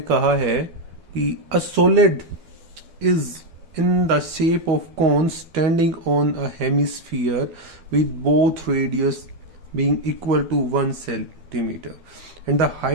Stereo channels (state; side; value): late; left; 12 ms